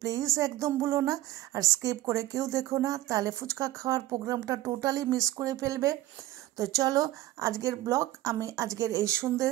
প্লিজ একদম ভুলো না। আর স্কিপ করে কেউ দেখো না, তাহলে ফুচকা খাওয়ার প্রোগ্রামটা টোটালি মিস করে ফেলবে। তো চলো, আজকের ব্লগ আমি আজকের এই সন্ধ্যে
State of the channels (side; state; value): left; quieter; 15.4 dB